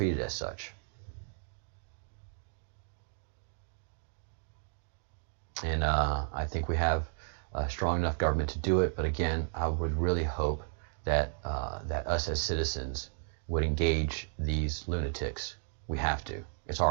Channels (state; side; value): silent; left; digital silence